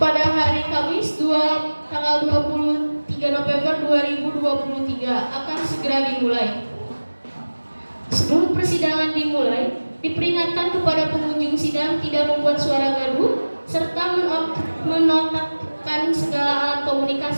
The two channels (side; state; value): both; inverted; correlation -1.00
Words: tanggal 23 November 2023 akan segera dimulai. Sebelum persidangan dimulai, diperingatkan kepada pengunjung sidang tidak membuat suara gaduh serta menonakkan segala alat